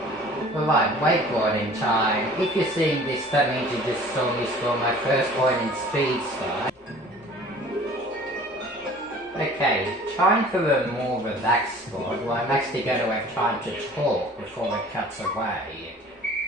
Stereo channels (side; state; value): both; normal; correlation 0.47